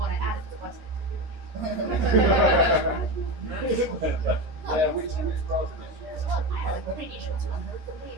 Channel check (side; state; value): left; late; 13 ms